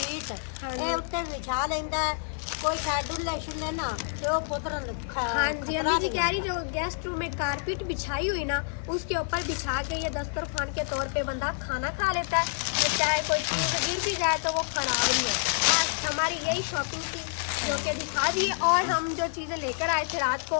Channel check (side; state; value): right; silent; digital silence